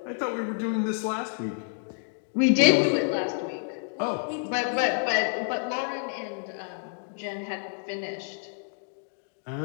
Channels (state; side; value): silent; right; 59 dB below the other